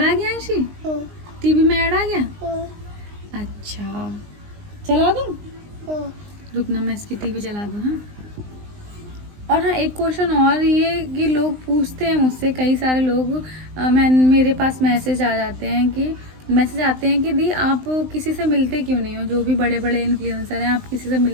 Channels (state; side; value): late; left; 19 ms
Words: आ गया अंशी, टीवी में ऐड आ गया। अच्छा चला दूँ, रुकना मैं इसकी टीवी चला दूँ। हाँ, और हाँ एक क्वेश्चन और, ये कि लोग पूछते हैं मुझसे, कई सारे लोग मेरे पास मैसेज आते हैं कि दी आप किसी से मिलते क्यों नहीं हो, जो भी बड़े बड़े इन्फ्लुएंसर हैं, आप किसी से